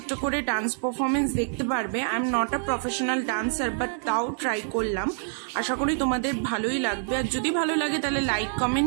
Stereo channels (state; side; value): silent; left; digital silence